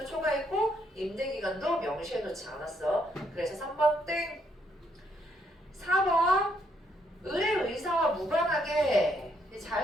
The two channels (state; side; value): normal; both; correlation 0.73